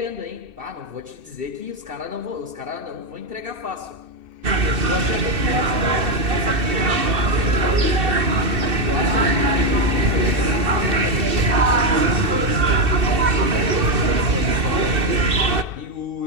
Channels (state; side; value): late; left; 2.7 ms